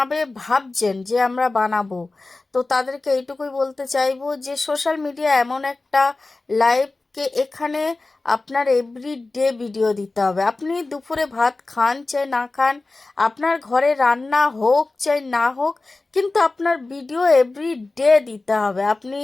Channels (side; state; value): right; quieter; 3.3 dB